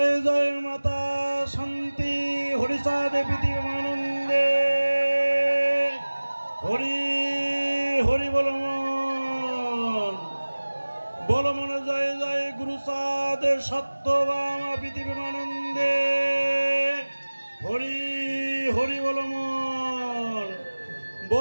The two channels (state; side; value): inverted; both; correlation -1.00